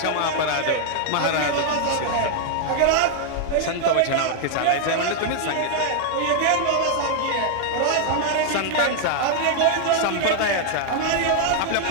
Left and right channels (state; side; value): different; both; correlation 0.00